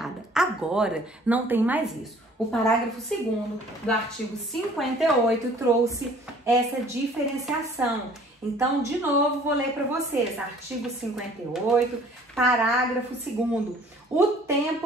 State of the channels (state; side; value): normal; both; correlation 0.53